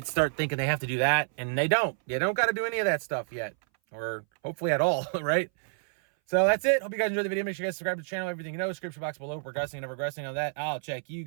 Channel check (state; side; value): silent; left; 59 dB below the other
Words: start thinking they have to do that and they don't. You don't got to do any of that stuff yet, or hopefully at all, right? So that's it. Hope you guys enjoyed the video. Make sure you guys subscribe to the channel. Everything description box below. Progressing and never regressing on that. I'll check you